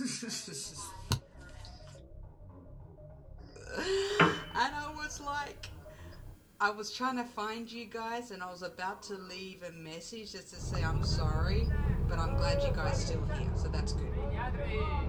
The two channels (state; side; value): identical; both; correlation 1.00